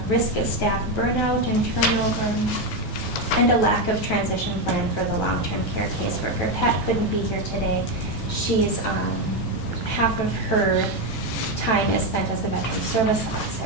Risk of staff burnout and turnover, and a lack of transition plan for the long-term care caseworker. Pat couldn't be here today. She's half of her time is spent as a veteran service officer,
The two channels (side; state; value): both; normal; correlation 0.09